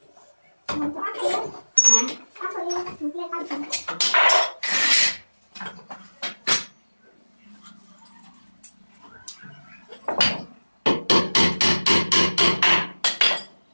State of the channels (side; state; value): both; inverted; correlation -1.00